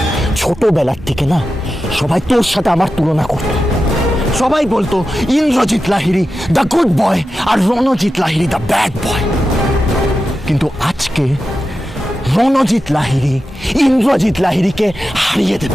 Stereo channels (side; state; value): both; normal; correlation 0.91